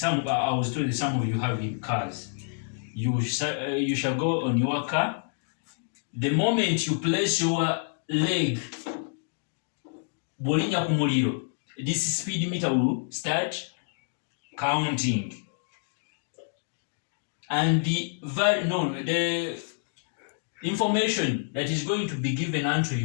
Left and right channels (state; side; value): silent; right; digital silence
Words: I was told that some of you have in cars. You shall go on your car. The moment you place your leg, bolinya ku muliro, this speed meter will start counting. And the information that is going to be given unto